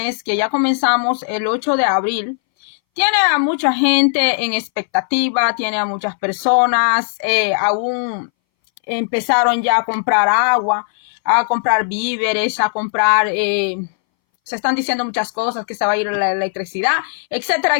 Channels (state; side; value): silent; right; 64 dB below the other